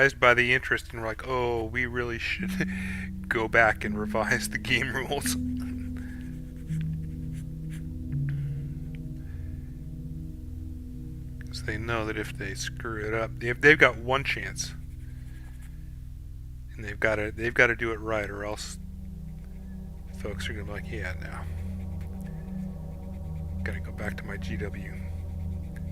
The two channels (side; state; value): both; identical; correlation 1.00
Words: by the interest and we're like, oh, we really should go back and revise the game rules. Because they know that if they screw it up, they've got one chance. And they've got to do it right, or else folks are going to be like, yeah, no. Gotta go back to my GW.